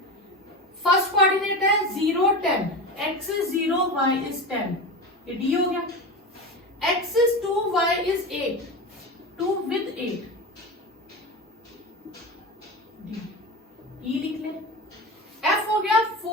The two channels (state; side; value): normal; both; correlation 0.25